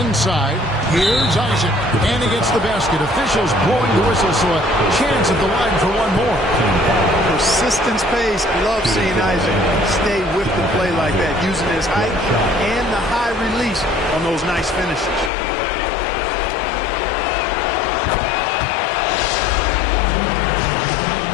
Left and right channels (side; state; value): right; drops out; at 15.3 s